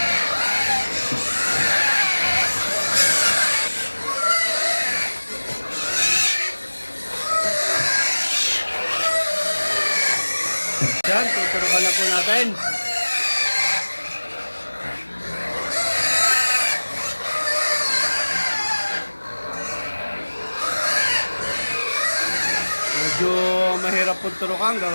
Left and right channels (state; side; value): inverted; both; correlation -1.00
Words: Yan, tuturukan na po natin. Medyo mahirap po turukan,